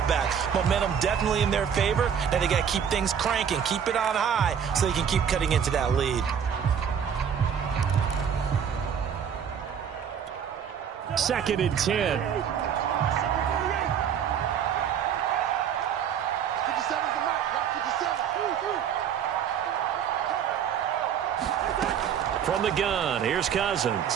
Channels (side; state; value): left; quieter; 8.1 dB